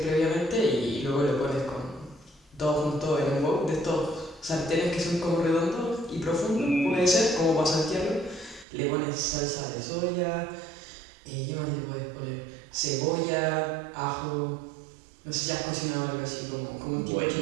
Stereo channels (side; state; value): left; drops out; at 8.7 s